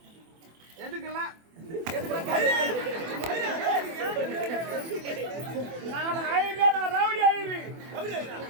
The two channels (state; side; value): late; left; 24 ms